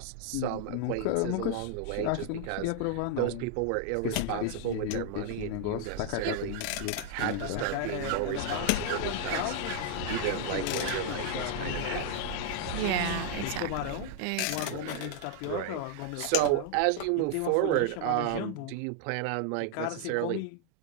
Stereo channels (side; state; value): both; different; correlation 0.00